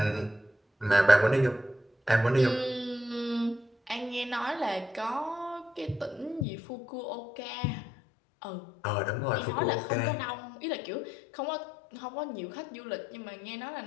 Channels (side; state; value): right; drops out; at 6.5 s